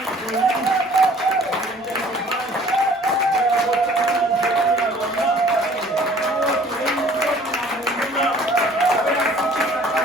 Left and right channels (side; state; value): both; normal; correlation 0.53